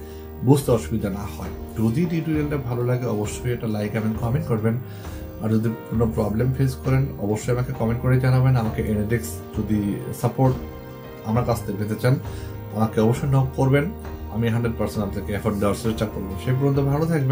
বুঝতে অসুবিধা না হয়। যদি টিউটোরিয়ালটা ভালো লাগে অবশ্যই এটা লাইক এবং কমেন্ট করবেন। আর যদি কোনো প্রবলেম ফেস করেন অবশ্যই আমাকে কমেন্ট করে জানাবেন। আমাকে এনএডেক্স যদি সাপোর্ট আমার কাছ থেকে পেতে চান আমাকে অবশ্যই নক করবেন। আমি 100% আপনাকে এফোর্ট দেওয়ার চেষ্টা করবো। সেই পর্যন্ত ভালো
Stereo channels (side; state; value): both; identical; correlation 1.00